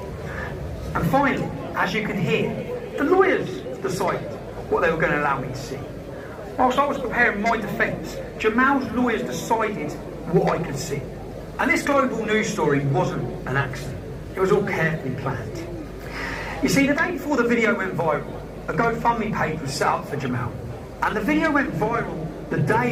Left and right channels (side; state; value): both; identical; correlation 1.00